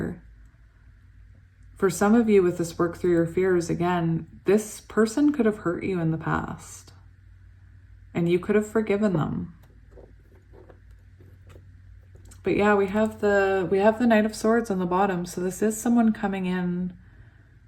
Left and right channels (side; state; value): both; identical; correlation 1.00